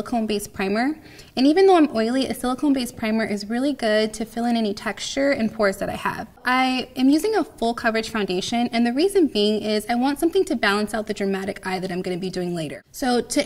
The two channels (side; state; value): both; identical; correlation 1.00